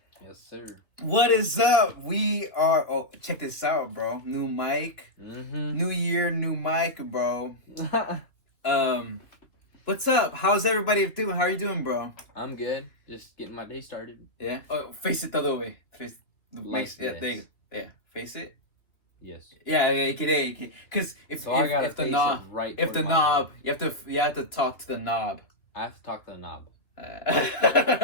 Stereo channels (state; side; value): late; right; 2.6 ms